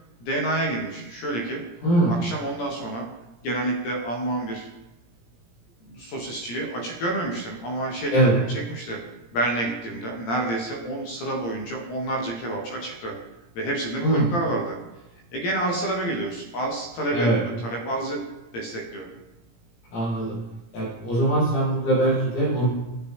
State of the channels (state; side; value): late; right; 17 ms